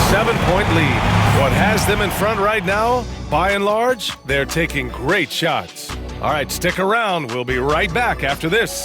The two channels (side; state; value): both; identical; correlation 1.00